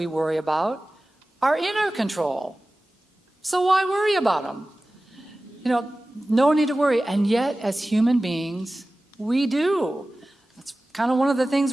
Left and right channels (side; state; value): both; normal; correlation 0.96